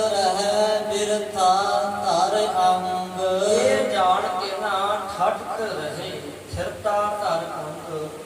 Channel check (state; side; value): identical; both; correlation 1.00